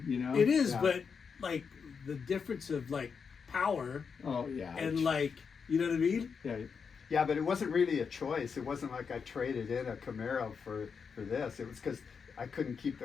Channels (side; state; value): right; quieter; 6.0 dB